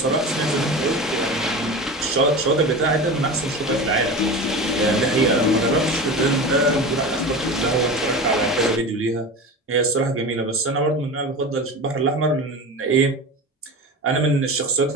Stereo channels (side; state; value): both; normal; correlation 0.29